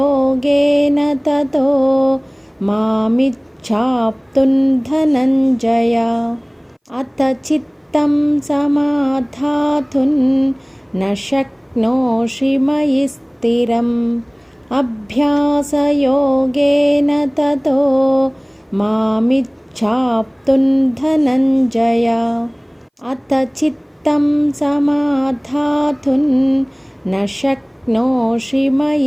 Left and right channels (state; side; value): identical; both; correlation 1.00